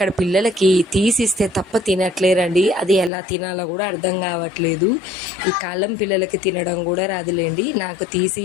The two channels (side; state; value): right; drops out; at 3.1 s